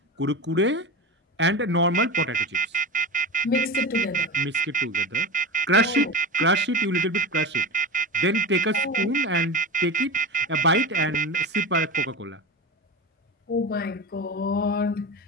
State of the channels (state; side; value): normal; both; correlation 0.26